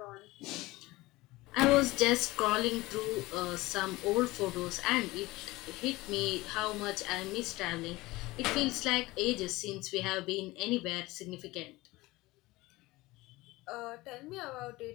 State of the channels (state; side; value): quieter; right; 20.1 dB